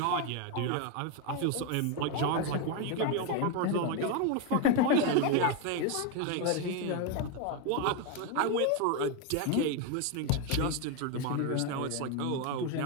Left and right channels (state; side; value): different; both; correlation 0.02